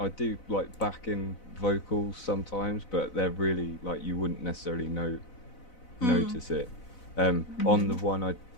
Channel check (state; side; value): late; right; 4.0 ms